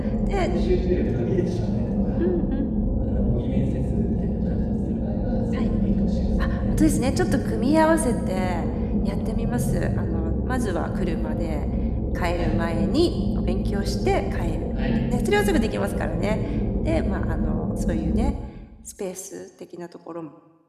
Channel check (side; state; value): both; identical; correlation 1.00